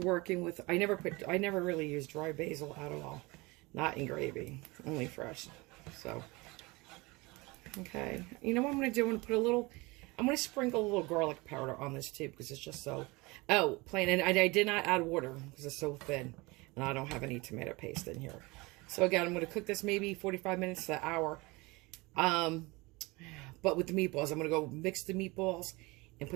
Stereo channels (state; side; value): quieter; left; 24.1 dB